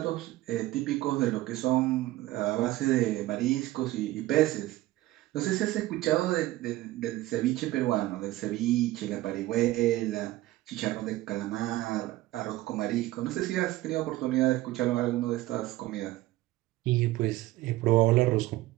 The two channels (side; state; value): left; quieter; 16.9 dB